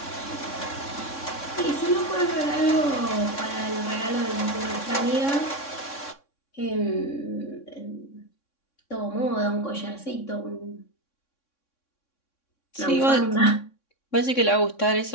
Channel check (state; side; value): late; right; 3.6 ms